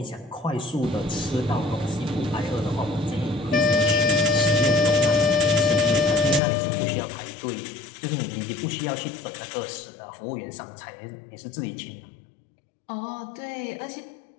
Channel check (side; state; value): right; drops out; at 6.4 s